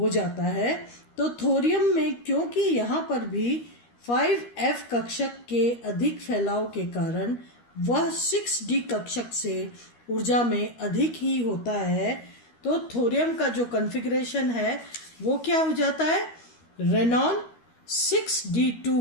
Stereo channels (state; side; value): late; right; 13 ms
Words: जाता है। तो थोरियम में क्योंकि यहाँ पर भी 5F कक्षक के अधिक फैलाव के कारण वह 6d कक्षक से ऊर्जा में अधिक ही होता है, तो थोरियम का जो कॉन्फ़िगरेशन है वो क्या हो जाता है, रेनॉन